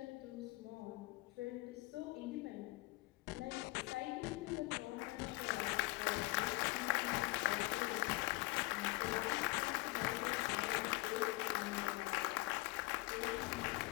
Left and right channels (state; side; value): quieter; right; 22.3 dB